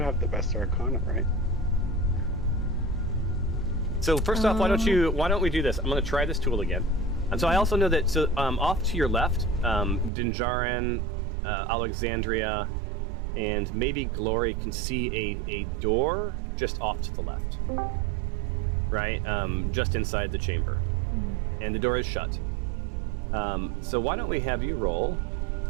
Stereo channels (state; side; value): drops out; left; at 10.1 s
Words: have the best Arcana, right? So first off, why don't we do this? I'm going to try this tool again. And so I also know that, off to your left, Dinjarin, Alexandria, and maybe Glory can see a door just off to the left. Right? Just inside the chamber. And the door is shut. So why don't we have you roll?